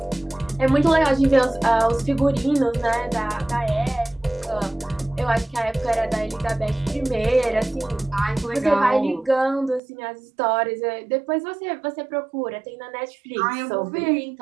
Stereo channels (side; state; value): left; drops out; at 9.8 s